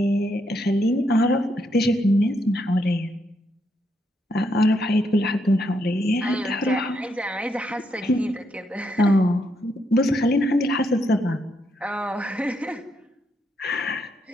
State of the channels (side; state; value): both; normal; correlation 0.77